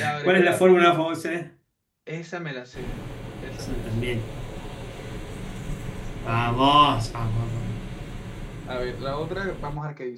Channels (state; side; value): identical; both; correlation 1.00